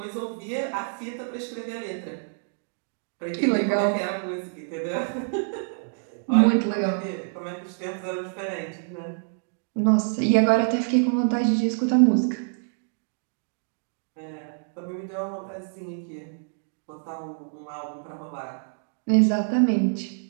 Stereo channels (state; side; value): silent; left; digital silence